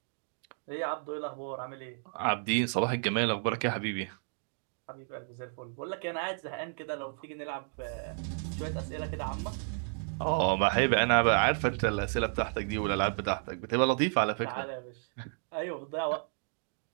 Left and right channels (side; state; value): left; silent; 56 dB below the other